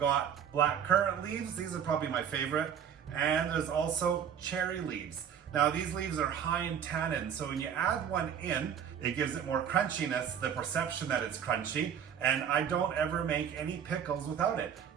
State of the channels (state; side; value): quieter; left; 8.3 dB